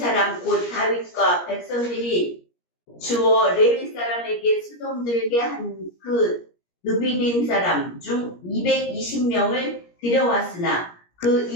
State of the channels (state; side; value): late; right; 17 ms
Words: 곧 다윗과 백성들이 주어 레위 사람에게 수종들게 한 그 느비님 사람 중 220명을 데려왔으나 그